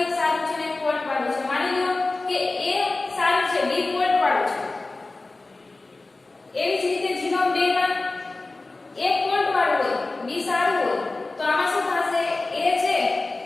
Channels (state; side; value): quieter; right; 3.3 dB